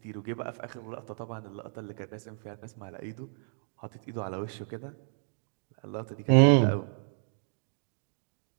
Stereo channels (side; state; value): left; silent; 56 dB below the other